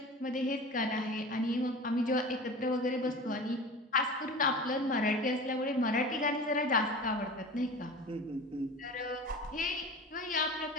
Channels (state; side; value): normal; both; correlation 0.35